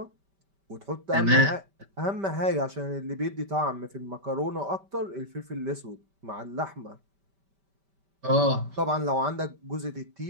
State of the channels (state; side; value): late; left; 5.1 ms